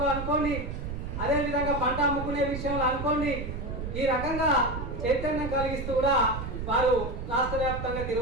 అనుకోండి, అదేవిధంగా పంట అమ్ముకునే విషయంలో అనుకోండి, ఈ రకంగా చైతన్యం కలిగిస్తూ కూడా వారు రాష్ట్ర వ్యాప్తంగా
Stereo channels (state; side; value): noise; right; rumble, 6 dB below the sound